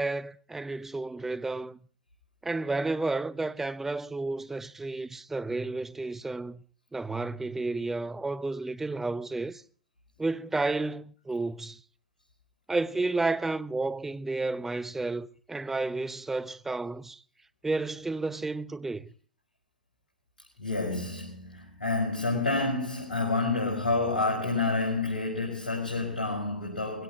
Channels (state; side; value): normal; both; correlation 0.34